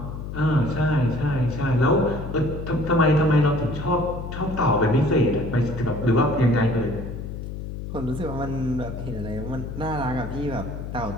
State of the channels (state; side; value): noise; left; hum, 8 dB below the sound